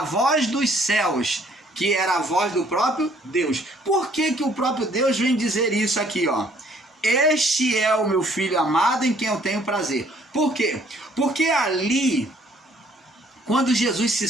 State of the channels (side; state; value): both; normal; correlation 0.62